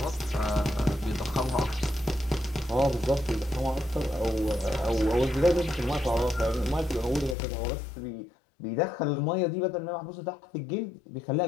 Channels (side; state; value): right; drops out; at 7.4 s